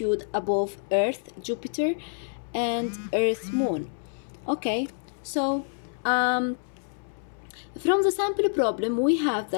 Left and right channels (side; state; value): right; silent; 60 dB below the other